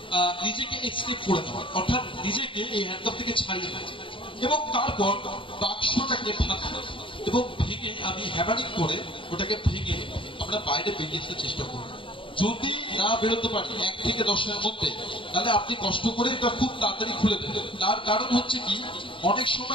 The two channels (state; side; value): late; right; 0.25 ms